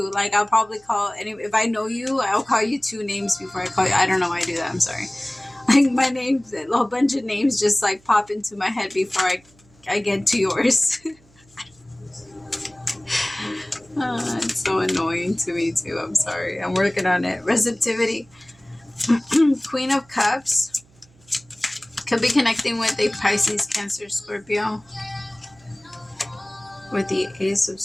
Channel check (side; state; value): right; noise; hum, 29 dB below the sound